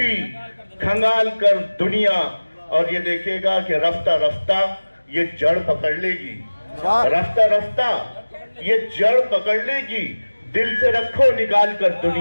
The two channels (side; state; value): both; inverted; correlation -1.00